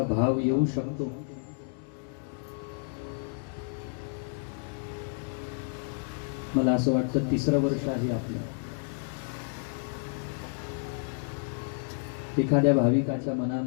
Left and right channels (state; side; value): silent; right; 56 dB below the other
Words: भाव येऊ शकतो। मला असं वाटतं 3रं वर्ष आहे आपलं। एखाद्या भाविकाच्या